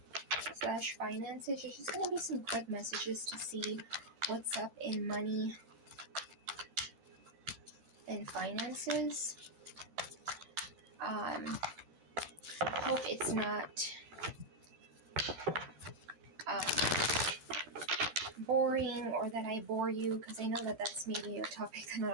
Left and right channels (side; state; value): left; late; 13 ms